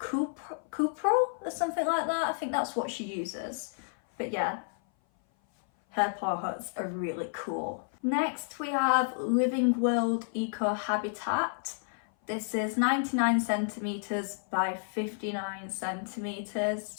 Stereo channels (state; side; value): silent; right; 56 dB below the other